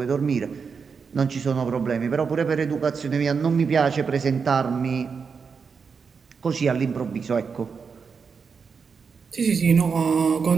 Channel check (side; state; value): left; quieter; 5.7 dB